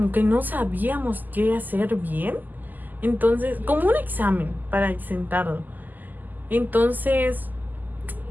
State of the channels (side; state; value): left; late; 0.085 ms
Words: que no sabíamos qué hacer bien. Entonces, como un examen para exentarlo. Entonces,